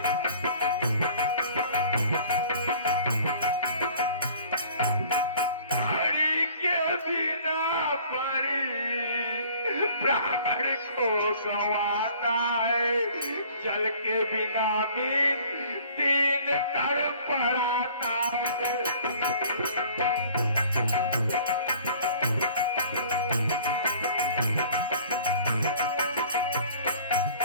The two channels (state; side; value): inverted; both; correlation -0.51